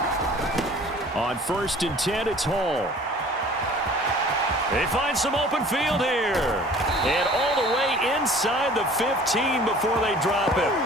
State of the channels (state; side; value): normal; both; correlation 0.48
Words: On 1st and 10, it's Hall. They find some open field here. And all the way inside the 15 before they drop it.